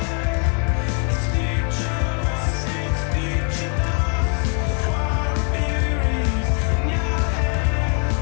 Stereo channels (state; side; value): quieter; right; 39.9 dB